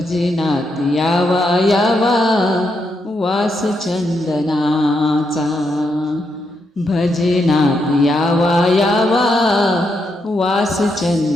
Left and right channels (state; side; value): normal; both; correlation 0.81